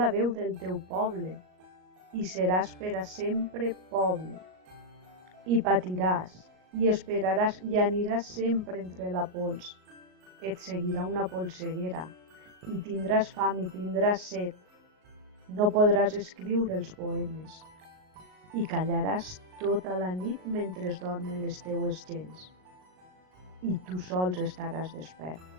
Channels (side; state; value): left; late; 38 ms